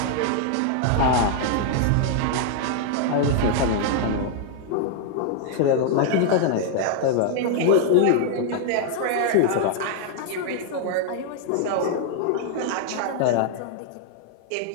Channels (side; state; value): both; different; correlation 0.00